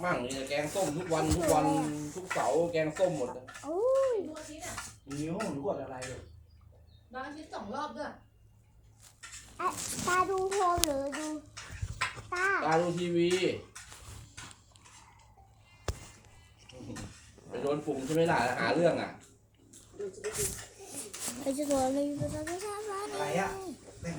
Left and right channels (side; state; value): both; identical; correlation 1.00